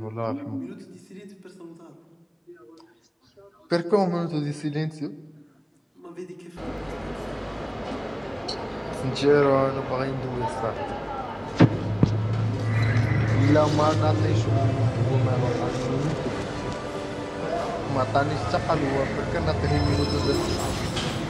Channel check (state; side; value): identical; both; correlation 1.00